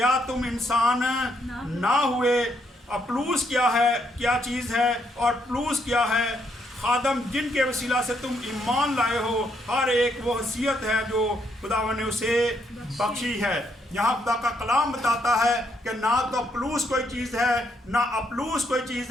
तुम इंसान ना हुए। अपलूस क्या है, क्या चीज़ है, और प्लूस क्या है? खादम, जिनके वसीला से तुम ईमान लाए हो। हर एक वो हैसियत है जो खुदावन ने उसे बख्शी है। यहाँ खुदा का कलाम बताता है कि ना तो प्लूस कोई चीज़ है, ना अपलूस कोई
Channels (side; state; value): both; normal; correlation 0.74